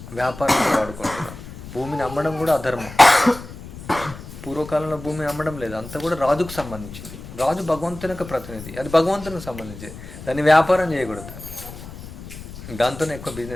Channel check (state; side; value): noise; left; rumble, 13 dB below the sound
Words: వ్యాపారంలో వాడుకుంటున్నారు. భూమిని అమ్మడం కూడా అధర్మం. పూర్వకాలంలో భూమిని అమ్మడం లేదు, అంతా కూడా రాజుకు సంబంధించింది. రాజు భగవంతుని యొక్క ప్రతినిధి, అది భగవంతునికి సంబంధించింది. దాన్ని వ్యాపారం చేయకూడదు, దాంతోనే ఎక్కువ